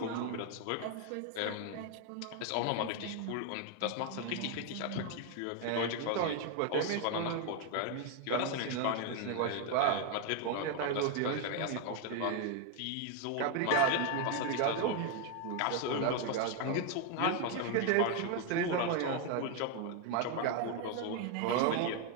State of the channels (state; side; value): different; both; correlation 0.01